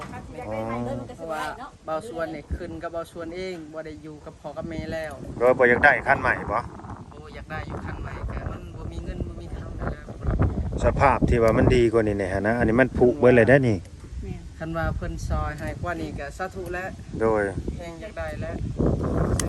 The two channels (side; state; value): both; identical; correlation 1.00